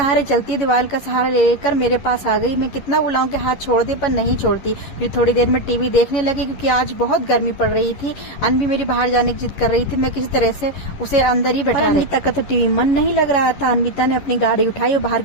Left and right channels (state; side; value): late; right; 11 ms